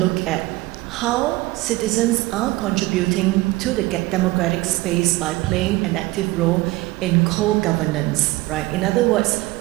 at how citizens are contributing to the democratic space by playing an active role in co-governance, right? In other words,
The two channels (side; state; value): left; quieter; 20.0 dB